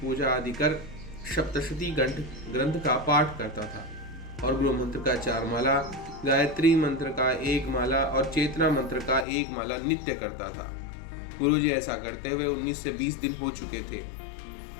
आदि कर सप्तशती ग्रंथ का पाठ करता था और गुरु मंत्र का 4 माला, गायत्री मंत्र का 1 माला और चेतना मंत्र का 1 माला नित्य करता था। गुरुजी ऐसा करते हुए 19 से 20 दिन हो चुके थे।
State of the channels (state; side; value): drops out; right; at 9.2 s